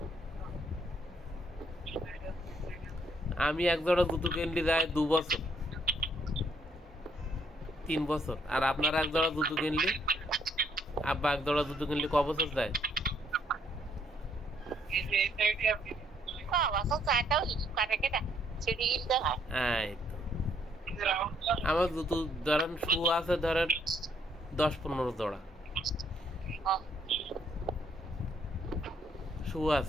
আমি এক জোড়া জুতো কিনলি যায় 2 বছর 3 বছর, আর আপনারা এক জোড়া জুতো কিনলি, আব্বা এক জোড়া জুতো কিনলি ক বছর যায়? এই তো। আমার জুতো ধরেন শু আছে ধরেন 10-15 জোড়া শু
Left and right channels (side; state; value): both; normal; correlation 0.69